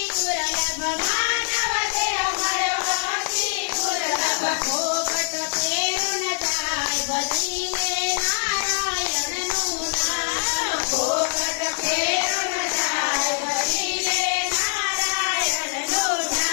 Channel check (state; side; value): silent; right; digital silence